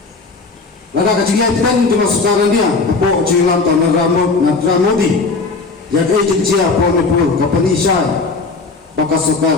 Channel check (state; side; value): quieter; right; 4.1 dB